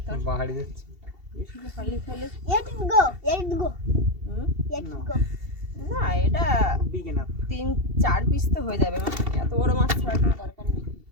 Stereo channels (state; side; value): late; left; 2.7 ms